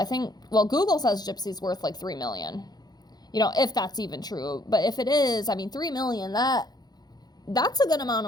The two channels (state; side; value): late; right; 0.19 ms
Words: think, well, Google says Gypsy's worth like $3 million. You know, if that's even true. But if it is, I mean, $3 million, that's a good amount